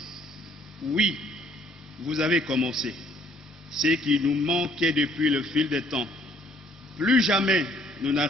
Oui, vous avez commencé. Ce qui nous manquait depuis le fil des temps. Plus jamais nous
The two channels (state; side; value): normal; both; correlation 0.62